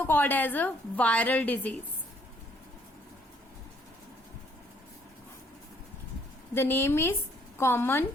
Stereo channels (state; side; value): normal; both; correlation 0.65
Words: called as a viral disease. The name is common